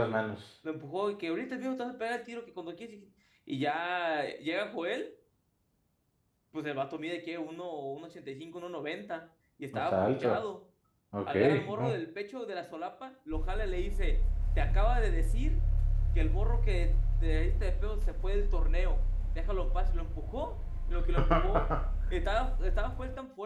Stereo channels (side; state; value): both; identical; correlation 1.00